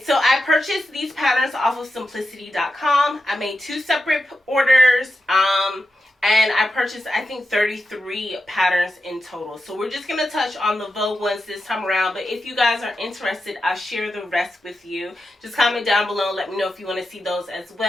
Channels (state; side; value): normal; both; correlation 0.89